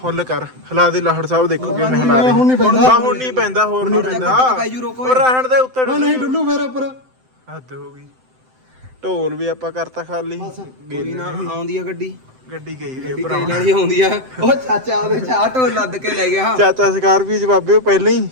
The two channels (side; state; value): left; late; 7.8 ms